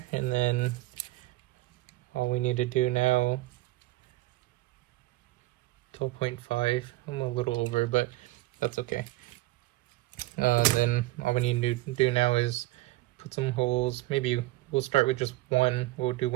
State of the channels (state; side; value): quieter; left; 18.6 dB